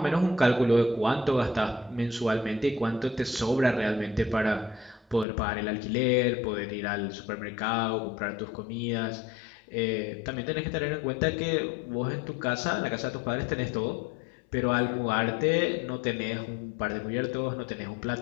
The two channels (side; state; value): right; drops out; at 5.2 s